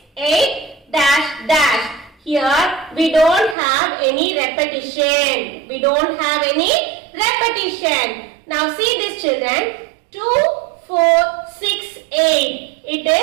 8, dash, dash. Here, we don't have any repetition. We don't have any repetition. Now, see this children. 2, 4, 6, 8. It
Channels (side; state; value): left; drops out; at 3.6 s